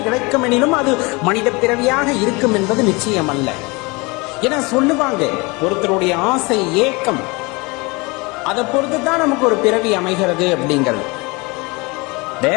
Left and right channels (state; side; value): quieter; right; 26.4 dB